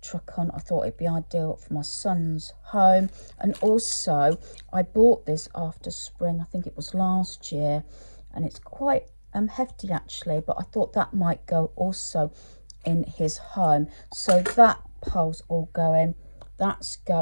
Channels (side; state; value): both; inverted; correlation -1.00